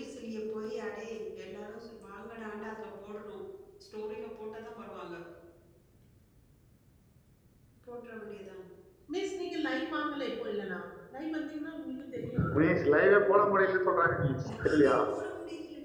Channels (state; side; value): identical; both; correlation 1.00